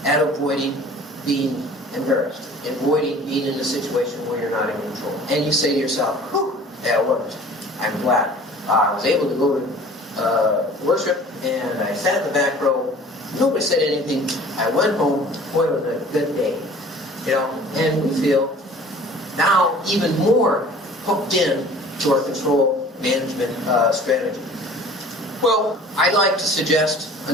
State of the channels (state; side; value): normal; both; correlation 0.47